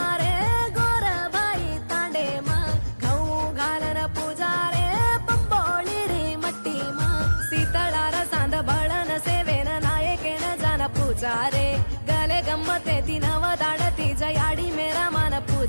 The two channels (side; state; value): both; inverted; correlation -1.00